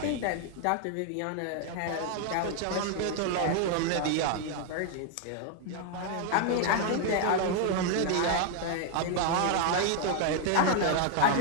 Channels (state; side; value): different; both; correlation 0.00